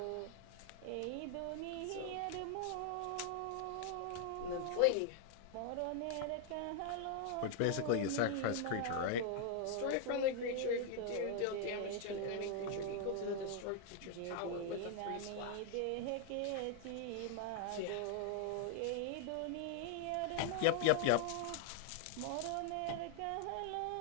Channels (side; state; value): both; different; correlation 0.00